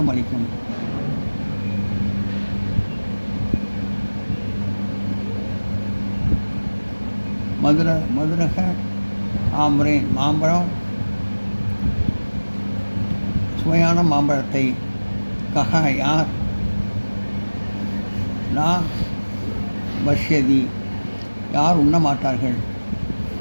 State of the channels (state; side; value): inverted; both; correlation -1.00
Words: அளிக்கும். மதுரக ஆம்பரேன் மாம்பழம் சுவையான மாம்பழத்தை கஹ யார் நா பஷ்யதி யார் உண்ண மாட்டார்கள்.